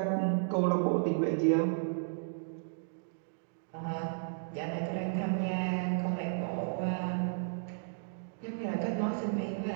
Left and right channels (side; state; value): left; silent; digital silence